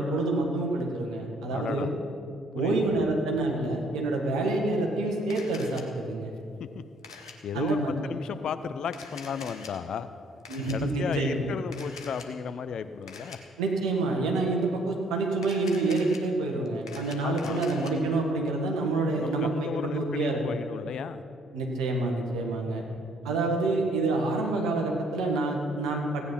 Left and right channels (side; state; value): both; normal; correlation 0.62